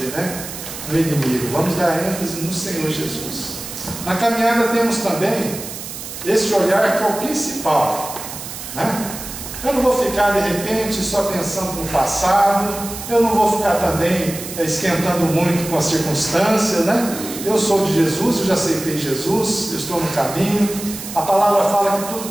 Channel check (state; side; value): noise; right; hiss, 10 dB below the sound